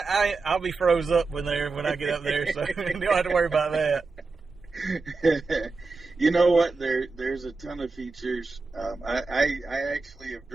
I'll be froze up when I get up there, so you don't have to worry about that. You know what? There's a ton of features. I actually have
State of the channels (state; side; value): quieter; left; 4.0 dB